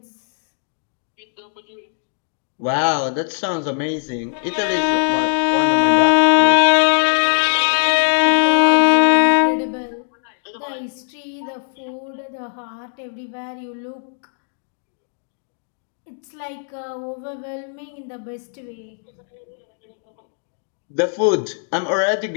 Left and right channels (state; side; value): silent; right; 65 dB below the other